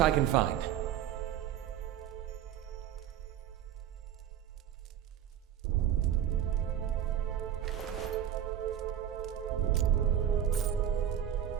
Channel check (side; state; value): left; quieter; 10.2 dB